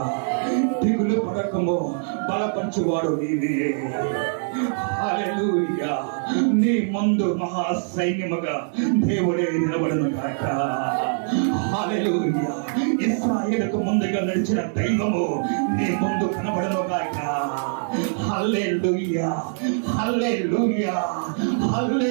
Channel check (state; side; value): silent; left; digital silence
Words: దిగులు పడకము, బలపరచువాడు నీవే. హల్లెలూయా. నీ ముందు మహా సైన్యముగా దేవుడే నిలబడును గాక. హల్లెలూయా. ఇశ్రాయేలుకు ముందుగా నడిచిన దైవము నీ ముందు కనబడును గాక. హల్లెలూయా.